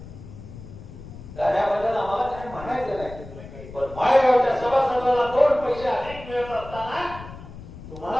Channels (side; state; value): left; noise; rumble, 15 dB below the sound